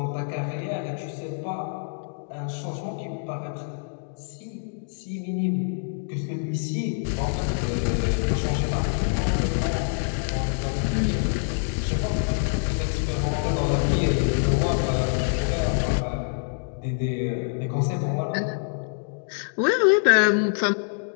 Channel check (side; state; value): right; silent; digital silence